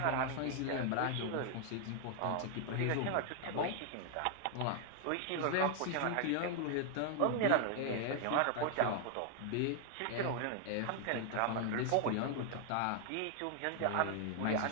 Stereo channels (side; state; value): both; different; correlation 0.00